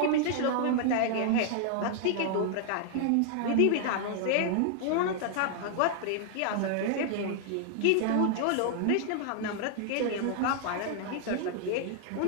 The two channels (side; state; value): both; different; correlation 0.00